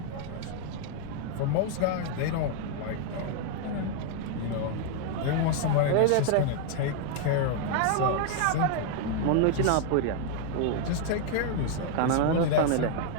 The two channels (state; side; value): different; both; correlation 0.00